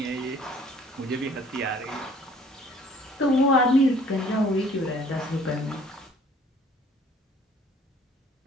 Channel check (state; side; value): normal; both; correlation 0.55